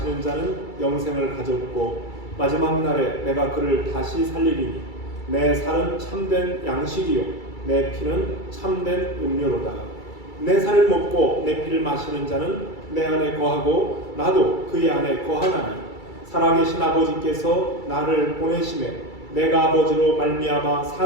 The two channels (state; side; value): late; right; 2.3 ms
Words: 자는 영생을 가졌고 마지막 날에 내가 그를 다시 살리리니 내 살은 참된 양식이요 내 피는 참된 음료로다. 내 살을 먹고 내 피를 마시는 자는 내 안에 거하고 나도 그의 안에 거하나니 살아계신 아버지께서 나를 보내심에 내가 아버지로 말미암아